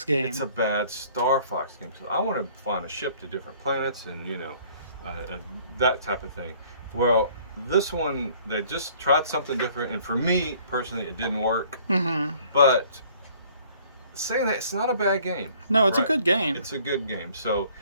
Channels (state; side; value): inverted; both; correlation -0.57